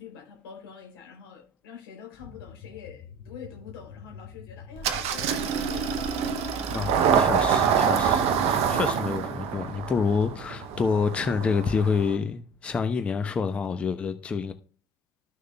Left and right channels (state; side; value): normal; both; correlation 0.43